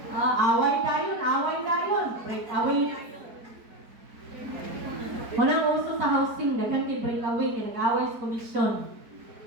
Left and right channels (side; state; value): left; late; 4.4 ms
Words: breakaway. Walang uso sa housing, daghan kay breakaway, kay nag-away sa komisyon.